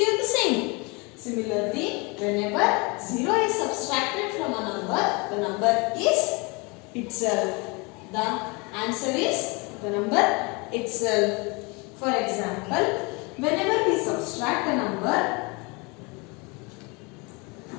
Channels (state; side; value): quieter; right; 28.5 dB